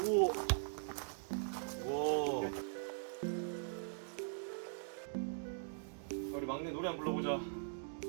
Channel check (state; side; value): silent; left; digital silence